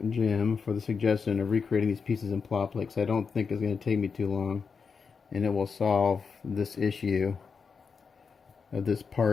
Jim, for the suggestion of recreating these pieces in plot plate, because I don't think it's going to take me too long, and it will solve this issue of this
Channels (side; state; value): right; quieter; 5.6 dB